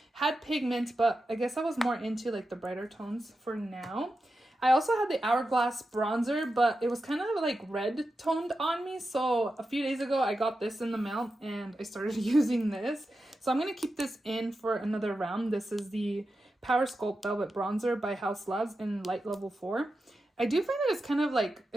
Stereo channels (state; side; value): normal; both; correlation 0.90